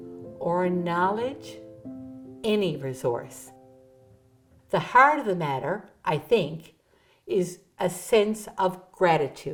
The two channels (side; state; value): both; identical; correlation 1.00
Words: or knowledge, any resource. The heart of the matter, I think, is a sense of